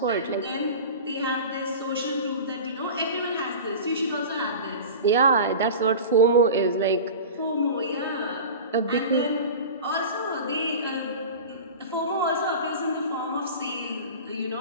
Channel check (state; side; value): inverted; both; correlation -0.33